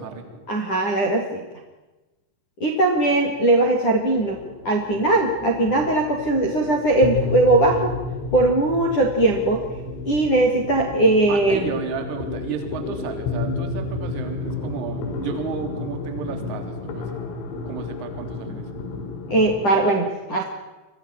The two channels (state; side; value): late; right; 10 ms